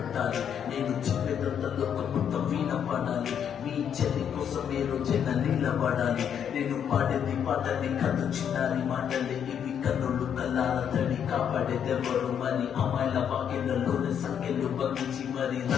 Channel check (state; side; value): quieter; right; 8.5 dB